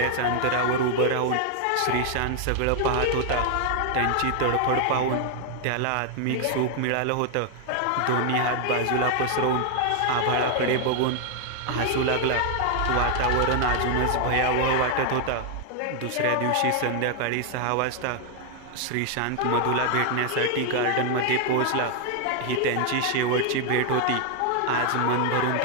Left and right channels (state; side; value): different; both; correlation 0.00